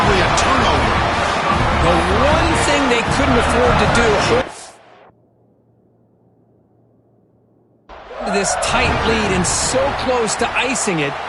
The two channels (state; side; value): identical; both; correlation 1.00